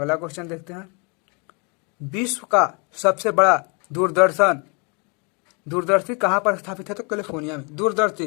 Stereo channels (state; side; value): quieter; right; 33.2 dB